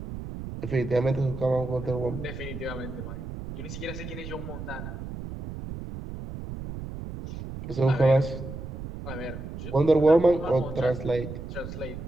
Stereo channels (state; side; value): noise; right; rumble, 9 dB below the sound